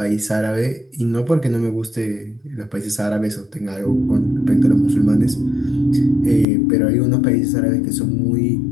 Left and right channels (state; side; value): drops out; right; at 6.5 s